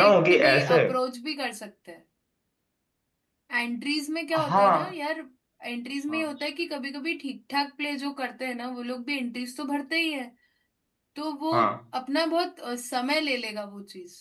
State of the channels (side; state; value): both; identical; correlation 1.00